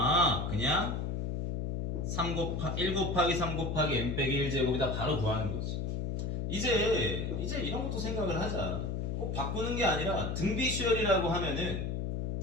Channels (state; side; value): noise; left; hum, 1 dB below the sound